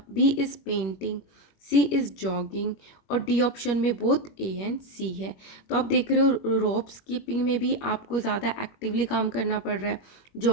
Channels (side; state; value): right; late; 21 ms